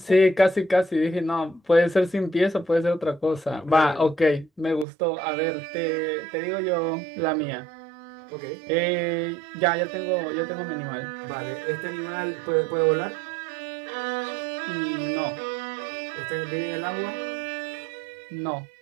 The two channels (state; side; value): drops out; left; at 4.9 s